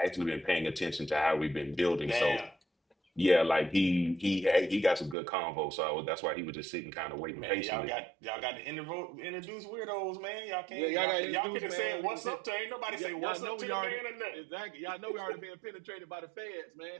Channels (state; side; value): drops out; left; at 5.2 s